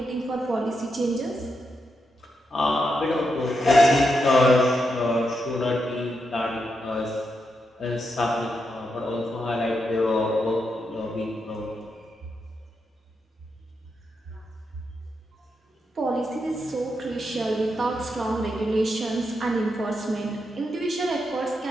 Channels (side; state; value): both; normal; correlation 0.84